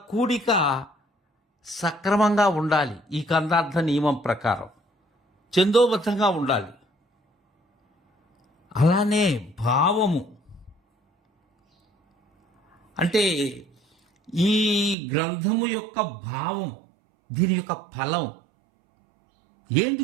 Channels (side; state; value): left; drops out; at 15.0 s